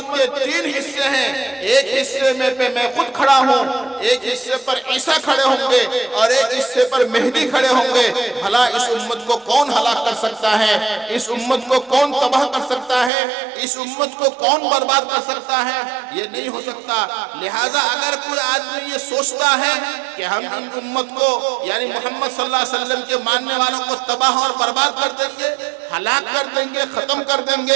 کے 3 حصے ہیں، ایک حصے میں پہ میں خود کھڑا ہوں، ایک حصے پر عیسیٰ کھڑے ہوں گے اور ایک حصے پر مہدی کھڑے ہوں گے، بھلا اس امت کو کون ہلاک کر سکتا ہے؟ اس امت کو کون تباہ کر سکتا ہے؟ اس امت کو کون برباد کر سکتا ہے؟ یہ نہیں ہو سکتا۔ لہٰذا اگر کوئی آدمی یہ سوچتا ہے کہ ہم ان امت کو یعنی محمد صلی اللہ علیہ وسلم کے ماننے والوں کو تباہ اور برباد کر دیں گے، ہلاک کر دیں گے، ختم کر دیں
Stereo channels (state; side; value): drops out; left; at 13.1 s